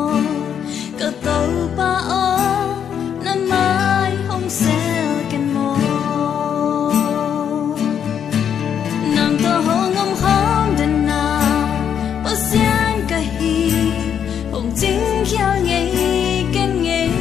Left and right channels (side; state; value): right; quieter; 8.4 dB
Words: cả tàu pa o năm mai không xeo ken mô nằm tơ hồ ngâm khóm đền na bao xiên cả hi hồng chính khéo nhảy ken nhảy